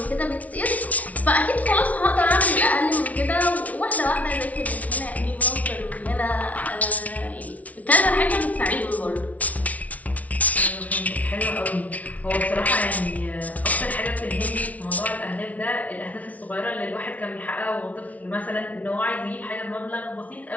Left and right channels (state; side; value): late; right; 0.070 ms